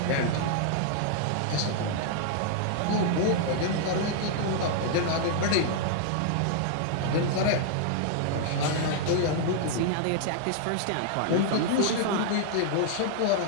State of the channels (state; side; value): different; both; correlation -0.01